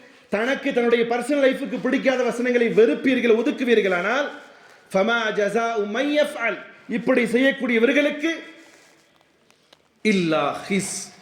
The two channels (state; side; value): identical; both; correlation 1.00